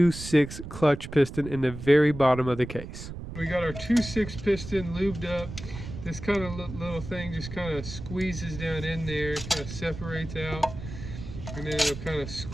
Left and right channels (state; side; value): noise; right; rumble, 10 dB below the sound